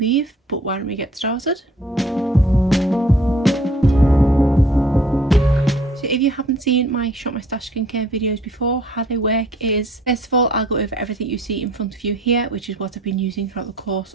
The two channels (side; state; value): both; normal; correlation 0.56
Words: leave, but why don't we get started? If you haven't seen my Shop My Stash skincare videos before, how they work is, first of all, I'll go over everything you see in front of you here, which is what I've been using throughout the course